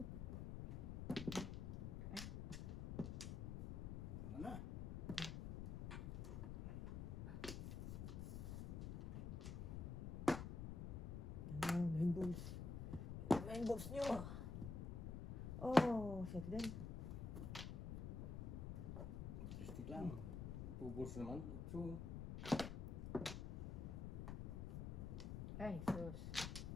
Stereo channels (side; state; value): left; noise; rumble, 4 dB below the sound